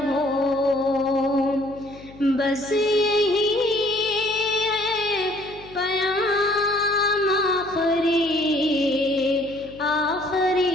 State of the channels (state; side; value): noise; left; hum, 21 dB below the sound